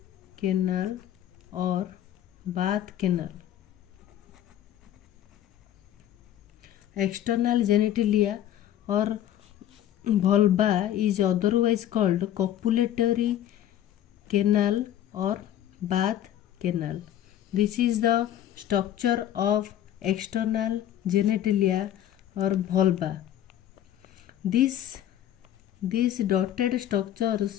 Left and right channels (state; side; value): quieter; right; 11.6 dB